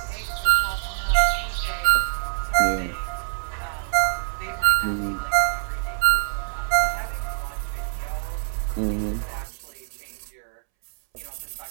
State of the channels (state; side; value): silent; left; 62 dB below the other